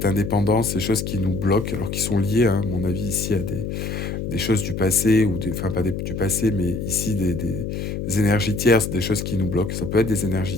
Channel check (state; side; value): noise; left; hum, 4 dB below the sound